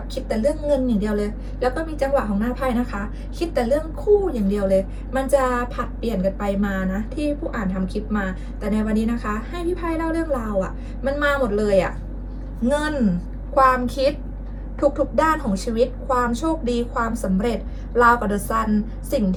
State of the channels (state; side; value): identical; both; correlation 1.00